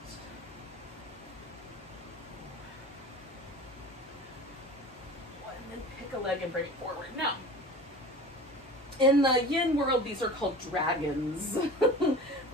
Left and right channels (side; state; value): both; normal; correlation 0.37